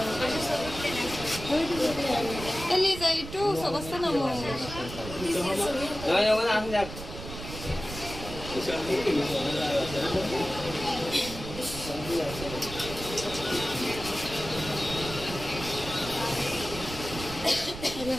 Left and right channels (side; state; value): right; noise; rumble, 10 dB below the sound